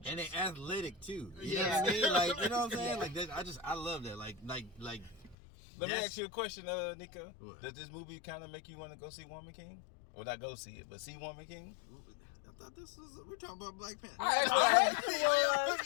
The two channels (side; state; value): right; drops out; at 5.4 s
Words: And they athletic too. You Yeah. know what I mean? Like, you know what I'm saying? Yeah. Like that, I love that. Like Let me that's- ask you a question, Nico. What? Does this movie kind of make you want to go see Woman King? Well, not go see it, but see Woman King? I thought we're talking about Black Panther.